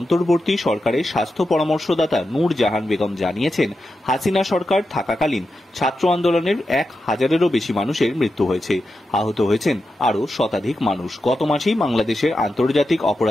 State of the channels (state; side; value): normal; both; correlation 0.89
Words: সরকারের স্বাস্থ্য পরামর্শদাতা নূর জাহান বেগম জানিয়েছেন, হাসিনা সরকার থাকাকালীন ছাত্র আন্দোলনের 1000-এরও বেশি মানুষের মৃত্যু হয়েছে। আহত হয়েছেন আরও শতাধিক মানুষ। গত মাসেই বাংলাদেশের আন্তর্জাতিক